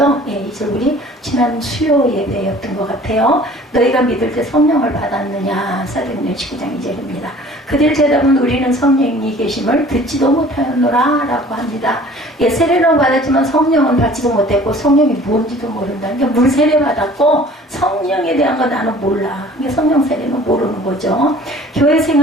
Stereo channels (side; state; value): both; normal; correlation 0.49